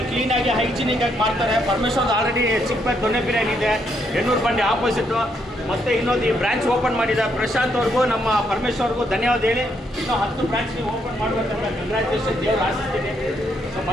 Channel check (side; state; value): both; normal; correlation 0.75